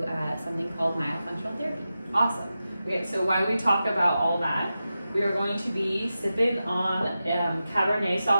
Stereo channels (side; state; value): both; inverted; correlation -0.92